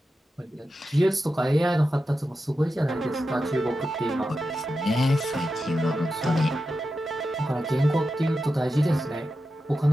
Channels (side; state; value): both; normal; correlation 0.90